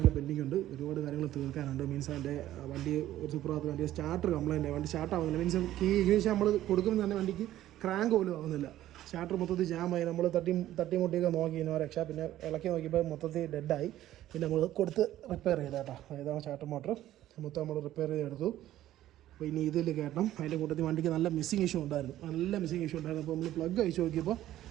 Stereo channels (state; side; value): quieter; left; 13.6 dB